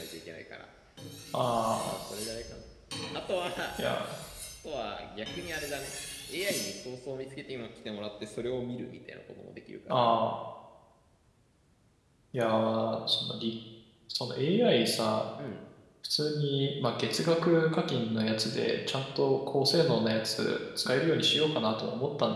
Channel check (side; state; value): both; identical; correlation 1.00